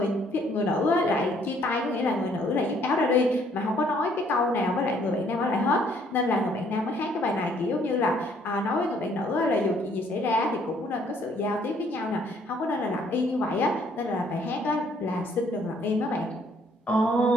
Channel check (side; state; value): both; normal; correlation 0.64